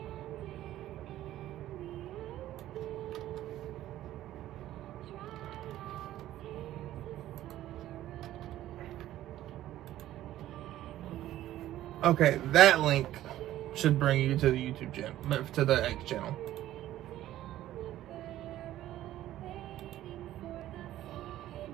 Okay, that link should bring you to the YouTube channel, to the X channel.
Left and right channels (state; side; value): quieter; left; 13.7 dB